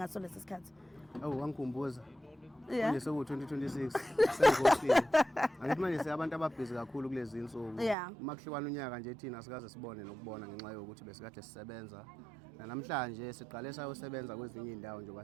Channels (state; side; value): drops out; left; at 8.0 s